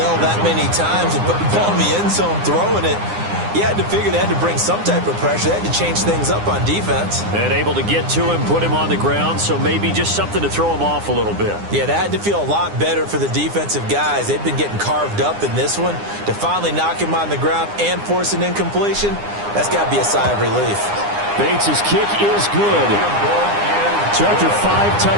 that many times and put the ball in the end zone throwing it, you had to figure they had to bring some type of pressure. They had to change things up on defense. And able to get to him, put him on the ground, so maybe just something to throw him off a little bit. Yeah, that had to feel a lot better for the defensive guys. They've been getting carved up in this one. To finally knock him on the ground and force an incompletion, that's got to be a sigh of relief. Bates' kick is good. So after 5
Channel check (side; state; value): left; late; 9.8 ms